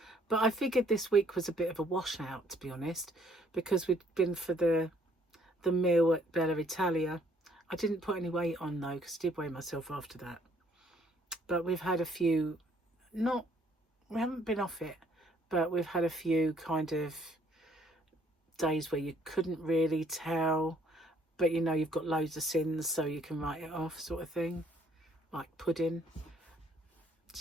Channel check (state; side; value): normal; both; correlation 0.64